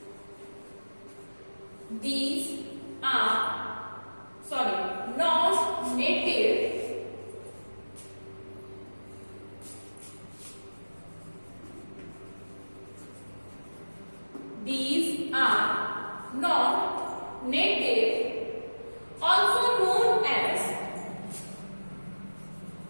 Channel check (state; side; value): inverted; both; correlation -1.00